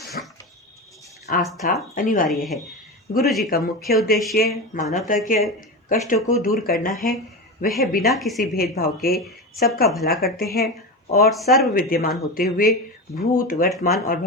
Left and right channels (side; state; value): both; normal; correlation 0.22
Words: आस्था अनिवार्य है। गुरुजी का मुख्य उद्देश्य मानवता के कष्टों को दूर करना है। वह बिना किसी भेदभाव के सबका भला करते हैं और सर्व विद्यमान होते हुए भूत, वर्तमान और